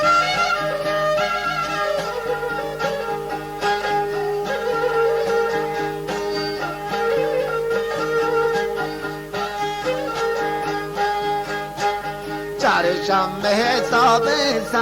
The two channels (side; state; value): both; identical; correlation 1.00